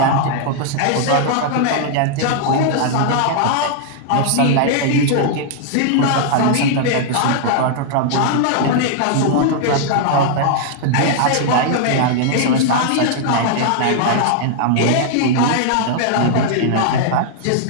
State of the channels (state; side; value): different; both; correlation -0.01